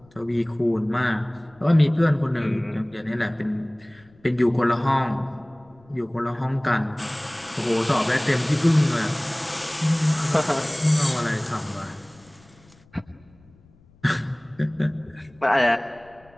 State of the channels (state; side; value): noise; left; rumble, 29 dB below the sound